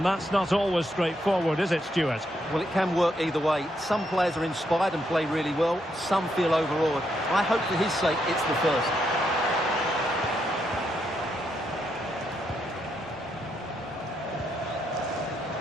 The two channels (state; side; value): normal; both; correlation 0.78